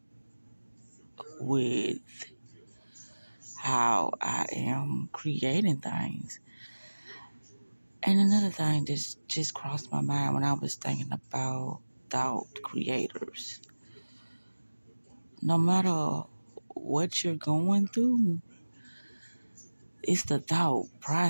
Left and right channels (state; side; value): inverted; both; correlation -1.00